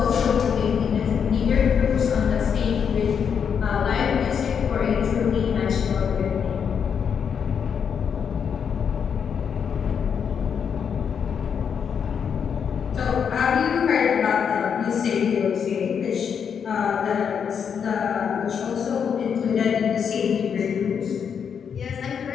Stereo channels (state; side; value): quieter; right; 7.2 dB